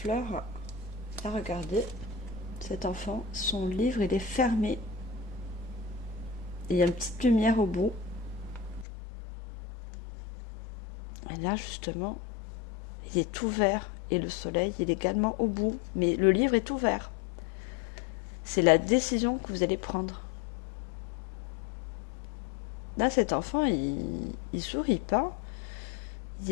Là, regardez, cet enfant, son livre, il est fermé. Et il y a une petite lumière au bout. Et là, justement, il est ouvert. Et le soleil, il est également au bout. Mais le livre est ouvert. C'est la décision que vous allez prendre. Là, cet enfant, il sourit pas. Il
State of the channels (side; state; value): right; drops out; at 8.8 s